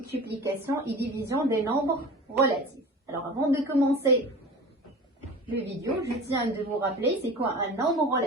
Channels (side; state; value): both; normal; correlation 0.36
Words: et division des nombres relatifs. Alors avant de commencer le vidéo, je tiens de vous rappeler c'est quoi un nombre